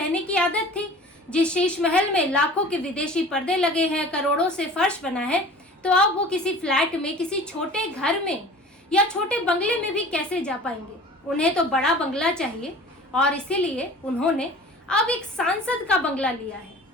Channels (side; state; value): both; normal; correlation 0.42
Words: की आदत थी। जिस शीश महल में लाखों के विदेशी पर्दे लगे हैं, करोड़ों से फर्श बना है, तो अब वो किसी फ्लैट में, किसी छोटे घर में या छोटे बंगले में भी कैसे जा पाएंगे। उन्हें तो बड़ा बंगला चाहिए, और इसीलिए उन्होंने अब एक सांसद का बंगला लिया है,